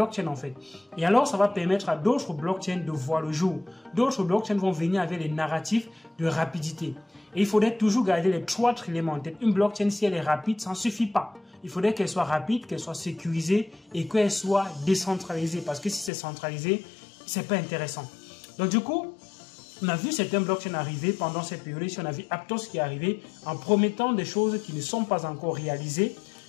en fait. Et alors, ça va permettre à d'autres blockchains de voir le jour. D'autres blockchains vont venir avec les narratifs de rapidité. Et il faudrait toujours garder les 3 éléments en tête. Une blockchain, si elle est rapide, ça ne suffit pas. Il faudrait qu'elle soit rapide, qu'elle soit sécurisée et qu'elle soit décentralisée. Parce que si c'est centralisé, c'est pas intéressant. Donc du coup, on a vu certains blockchains arriver pendant cette période. On a vu Aptos qui est arrivé en promettant des choses qui ne sont pas encore réalisées.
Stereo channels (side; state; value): right; drops out; at 16.1 s